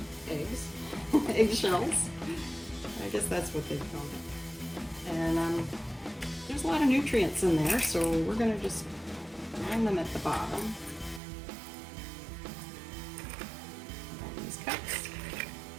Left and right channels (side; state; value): left; drops out; at 11.2 s